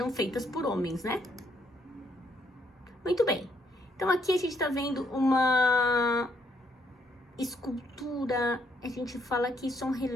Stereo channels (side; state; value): both; normal; correlation 0.72